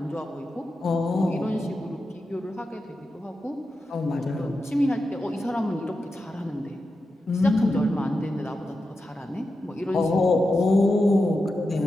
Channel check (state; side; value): normal; both; correlation 0.90